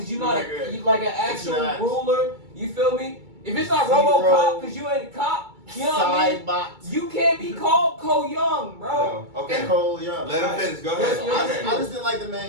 you're not like an actual ruler. You feel me? If it's not RoboCop because you ain't a cop. You know what I mean? You can't be called Cole Young, bro. No. Okay. Cole Young. Let him finish. Go ahead. I just didn't like the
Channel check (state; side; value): late; left; 2.3 ms